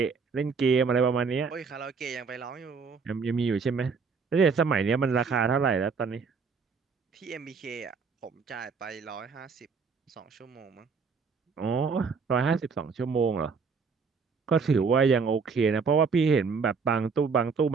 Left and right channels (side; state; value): left; quieter; 5.3 dB